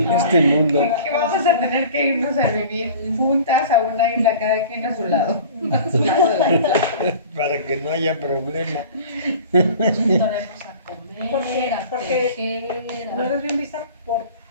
este mundo. Que vamos a tener que irnos a vivir juntas a una isla, cada quien a su lado de la isla. Para que no haya problema. Juntaremos a comer, a Porque tejer, no eres bien vista por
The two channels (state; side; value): inverted; both; correlation -0.42